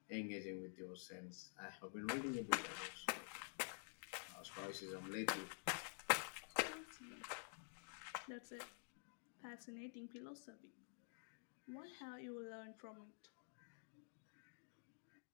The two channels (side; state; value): right; silent; digital silence